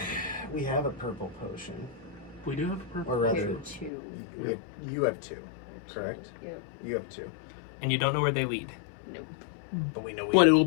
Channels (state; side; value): drops out; right; at 3.9 s